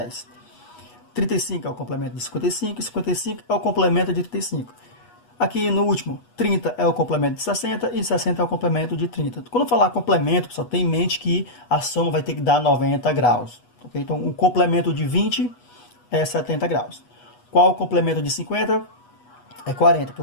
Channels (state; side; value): late; right; 8.2 ms